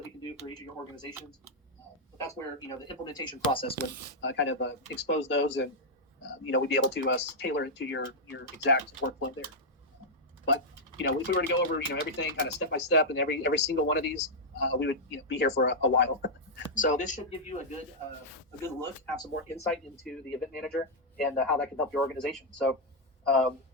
we can do for each of your organizations. But that's where the implementation process would kind of expose those, and we'd be able to tailor it to your exact workflow there. But if we were to go over everything kind of step by step, and every single one of these, we would be here for a while. So this should give you a good look, have some more insight into the event manager and how that can help your organization. So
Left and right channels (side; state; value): both; normal; correlation -0.05